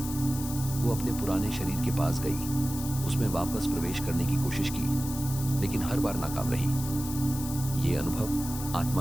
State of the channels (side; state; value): left; noise; hiss, 9 dB below the sound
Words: वो अपने पुराने शरीर के पास गई, उसमें वापस प्रवेश करने की कोशिश की, लेकिन हर बार नाकाम रही। ये अनुभव